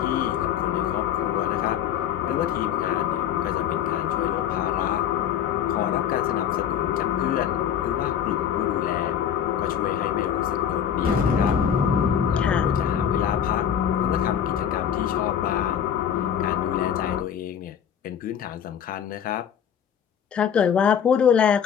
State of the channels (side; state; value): right; quieter; 8.9 dB